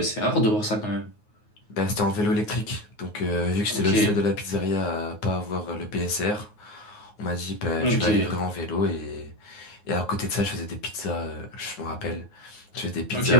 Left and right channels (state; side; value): late; right; 9.5 ms